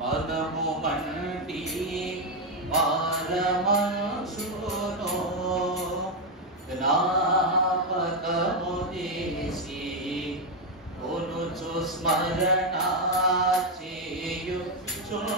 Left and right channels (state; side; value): normal; both; correlation 0.04